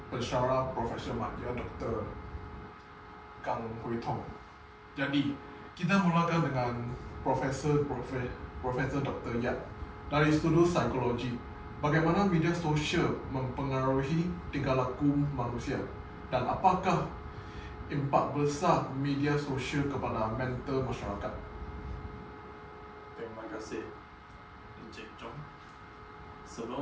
pensyarah profesional dia, Dr. Kang Hui Tong. Jadi, kita mulakan dengan Profesor Dr. Yap dari studi psikologi. Bagaimana media sosial mempengaruhi tingkah laku manusia dan apakah impak besar media sosial kepada mental masyarakat? Terima kasih, Encik Chong.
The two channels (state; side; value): identical; both; correlation 1.00